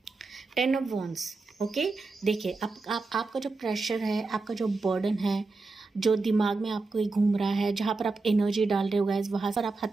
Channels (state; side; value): quieter; left; 3.8 dB